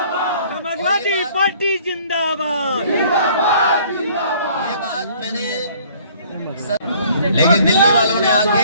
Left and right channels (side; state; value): both; inverted; correlation -0.56